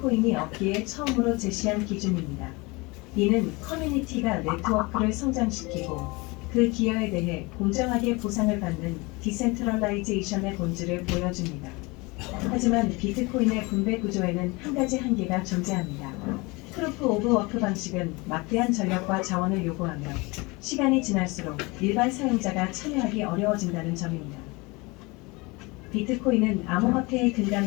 얻기에 처음으로 제시한 기준입니다. 이는 커뮤니티가 네트워크를 성장시키고 그 기여에 대해 공정하게 보상을 받는 디센트럴라이제이션의 본질을 보여줍니다. 하지만 비트코인의 분배 구조에는 한 가지 한계가 존재합니다. 프루프 오브 워크 방식은 막대한 전력과 자원을 요구하며 시간이 지날수록 일반 사용자가 참여하기 어려워진다는 점입니다. 비트코인은 암호화폐의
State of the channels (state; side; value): quieter; right; 25.4 dB